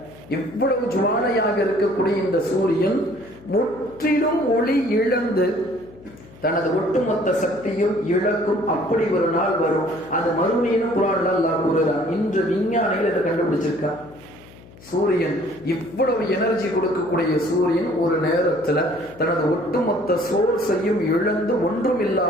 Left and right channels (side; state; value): left; noise; hum, 22 dB below the sound